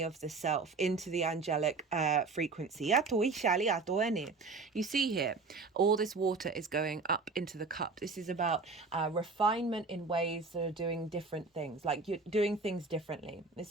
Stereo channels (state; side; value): quieter; left; 4.1 dB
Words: of the self into the angelic frequency. You see here, all this water is going up into the cup. This is about refinement in ways that are doing different things, like you're doing things differently.